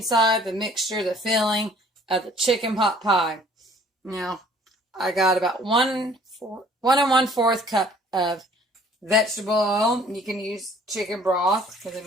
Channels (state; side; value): normal; both; correlation 0.55